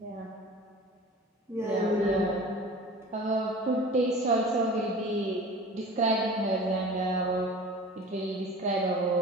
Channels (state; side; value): normal; both; correlation 0.40